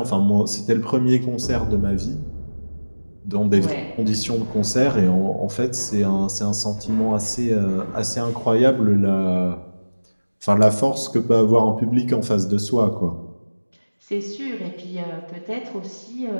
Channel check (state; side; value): inverted; both; correlation -1.00